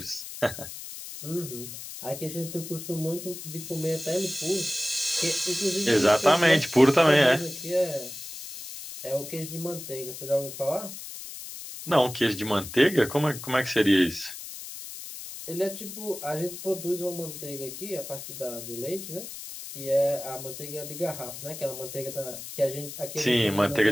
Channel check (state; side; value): noise; left; hiss, 10 dB below the sound